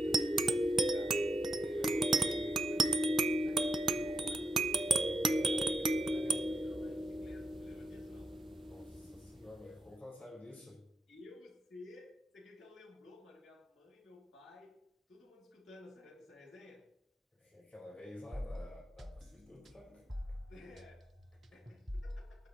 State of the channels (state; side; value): normal; both; correlation 0.83